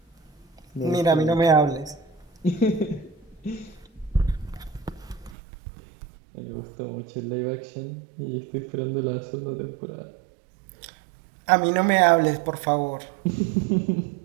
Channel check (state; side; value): drops out; left; at 5.4 s